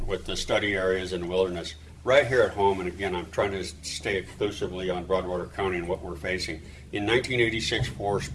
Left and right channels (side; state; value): both; identical; correlation 1.00